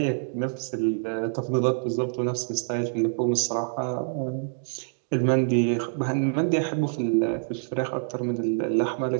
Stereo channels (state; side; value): silent; left; digital silence